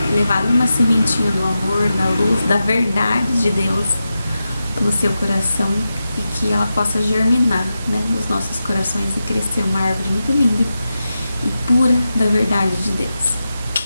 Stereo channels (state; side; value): inverted; both; correlation -0.90